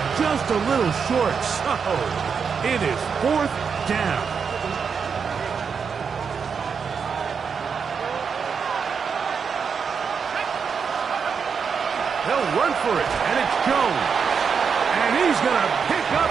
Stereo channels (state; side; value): quieter; left; 6.2 dB